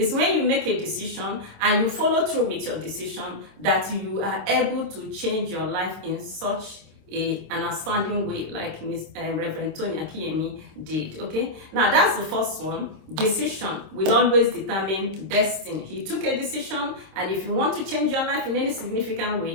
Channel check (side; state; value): left; late; 26 ms